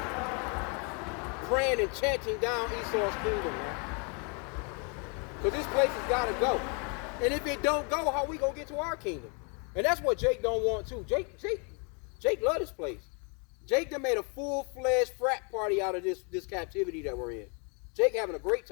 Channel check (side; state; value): right; quieter; 35.5 dB